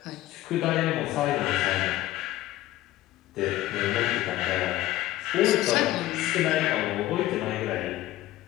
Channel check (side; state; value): right; quieter; 15.5 dB